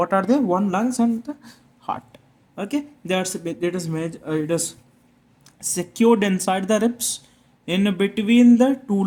are they? One, lungs and the heart. Okay, it is secured inside the ribs, in between the two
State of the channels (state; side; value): identical; both; correlation 1.00